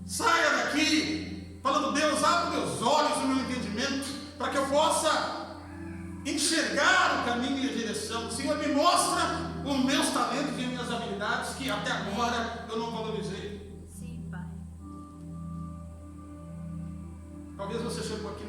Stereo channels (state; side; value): identical; both; correlation 1.00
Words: Saia daqui falando: Deus, abre meus olhos, o meu entendimento, para que eu possa enxergar o caminho e a direção. Senhor, me mostra os meus talentos e minhas habilidades que até agora eu não valorizei. Sim, Pai. Talvez você chegou aqui